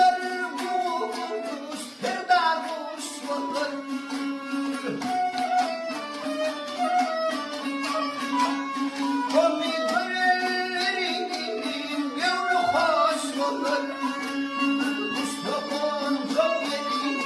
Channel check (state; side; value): identical; both; correlation 1.00